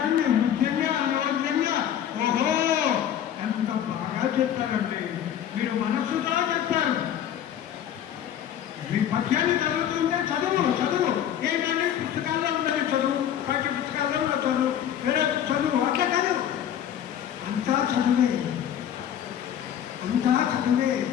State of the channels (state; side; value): quieter; right; 10.0 dB